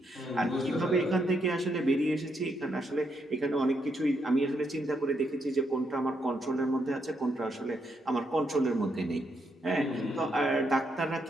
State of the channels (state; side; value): normal; both; correlation 0.78